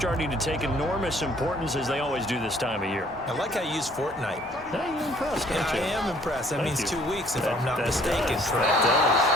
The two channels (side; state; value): both; normal; correlation 0.59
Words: to take enormous importance as they always do this time of year. I like how you use fortnight. You're impressed, aren't you? I am impressed. That means 2 weeks, if I'm not that mistaken. Does. Correct.